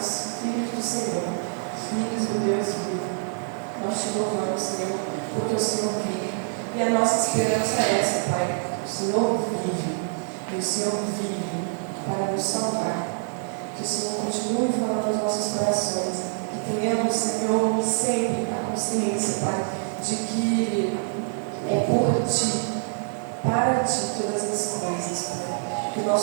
filhos do Senhor, filhos do Deus vivo. Nós te louvamos, Senhor, porque o Senhor vive. E a nossa esperança é essa, Pai. O Senhor vive. E o Senhor vive para nos salvar. Que o Senhor continue falando nos nossos corações. Que tenhamos, Senhor, sempre a consciência, Pai, de que é por Ti, para Ti todas as coisas, Pai. Que o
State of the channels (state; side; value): silent; left; digital silence